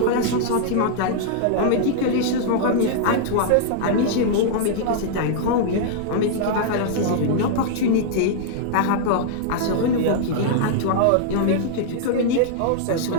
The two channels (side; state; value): both; different; correlation -0.01